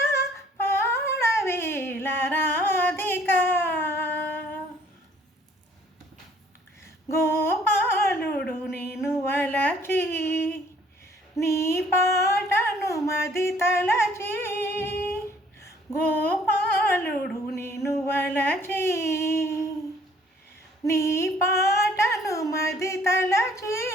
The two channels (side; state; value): both; normal; correlation 0.58